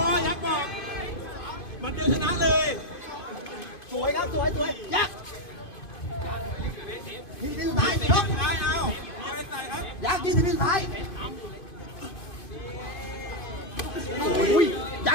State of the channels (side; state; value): right; late; 2.5 ms